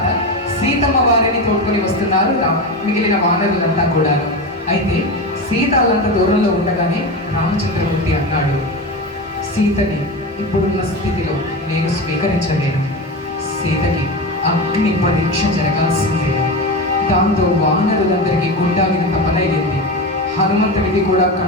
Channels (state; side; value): normal; both; correlation 0.21